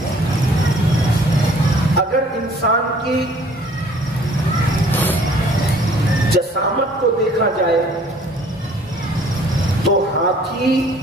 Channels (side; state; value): both; normal; correlation 0.55